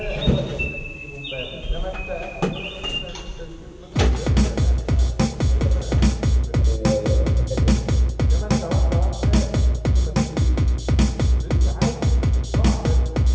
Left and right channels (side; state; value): both; identical; correlation 1.00